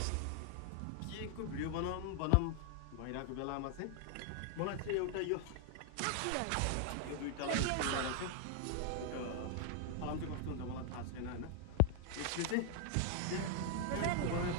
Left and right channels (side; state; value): both; different; correlation 0.00